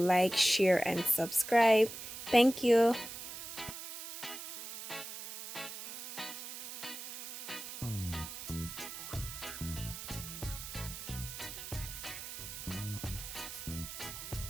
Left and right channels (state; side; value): noise; right; hiss, 9 dB below the sound